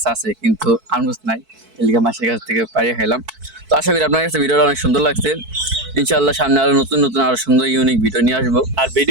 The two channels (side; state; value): left; late; 4.5 ms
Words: আছে কিন্তু আলমুজ নাই, এলিকা মাসের কাছ থেকে পাড়িয়ে খাইলাম। তো আশা করি আপনার কাছে ভিডিওটা অনেক সুন্দর লাগছে। ইনশাআল্লাহ সামনে আরো নতুন নতুন আরো সুন্দর ইউনিক ভিডিও নিয়ে আসবো। আর